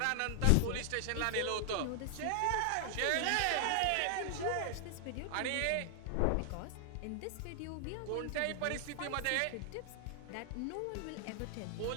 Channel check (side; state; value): both; different; correlation 0.00